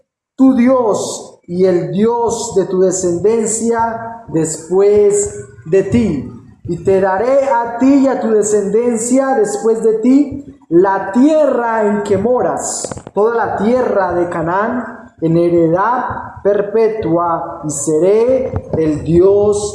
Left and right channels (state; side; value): identical; both; correlation 1.00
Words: tu Dios y el Dios de tu descendencia después de ti. Y te daré a ti y a tu descendencia después de ti la tierra en que moras, toda la tierra de Canaán, en heredad perpetua, y seré el